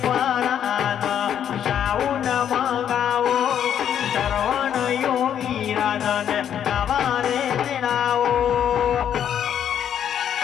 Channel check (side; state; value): right; quieter; 9.4 dB